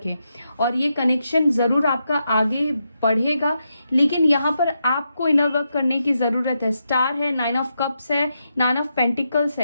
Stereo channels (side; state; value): both; inverted; correlation -0.84